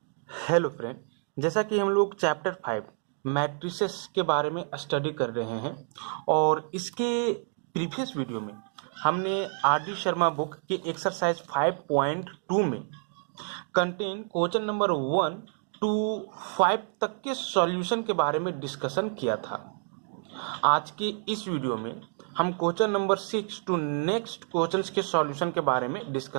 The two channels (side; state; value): left; silent; 57 dB below the other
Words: Hello friend, जैसा कि हम लोग चैप्टर 5 मैट्रिसेस के बारे में स्टडी कर रहे हैं और इसके प्रीवियस वीडियो में हमने आर डी शर्मा बुक के एक्सरसाइज 5.2 में कंटेन क्वेश्चन नंबर 1 टू 5 तक के सॉल्यूशन के बारे में डिस्कशन किया था। आज के इस वीडियो में हम question number 6 two next questions के सॉल्यूशन के बारे में